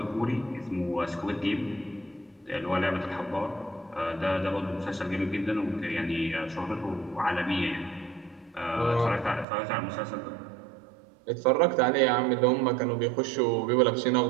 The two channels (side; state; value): left; drops out; at 9.5 s